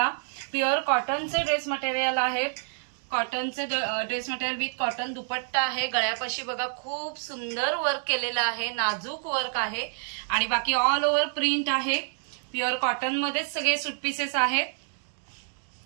प्युअर कॉटनचे ड्रेस मटेरियल आहेत। कॉटनचे ड्रेस मटेरियल विथ कॉटन दुपट्टा आहे। गळ्यापाशी बघा खूप सुंदर वर्क केलेलं आहे, नाजूक वर्क आहे आणि बाकी ऑल ओव्हर प्रिंट आहे। प्युअर कॉटन मध्येच सगळे सूट पीसेस आहेत।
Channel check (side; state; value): left; silent; digital silence